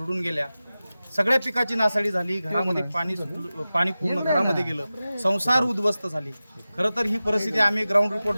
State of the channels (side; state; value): both; inverted; correlation -0.95